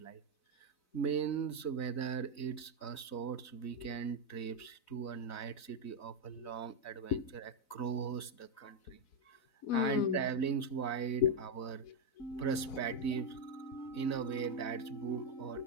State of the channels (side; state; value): right; late; 4.0 ms